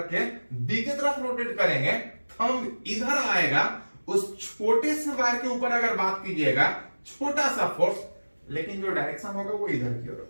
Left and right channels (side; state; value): both; inverted; correlation -1.00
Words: के बी के तरफ रोटेट करेंगे, थंब इधर आएगा। उस छोटे से वायर के ऊपर अगर बात कीजिएगा, छोटा सा फोर्स, लेकिन जो डायरेक्शन होगा वो इधर की ओर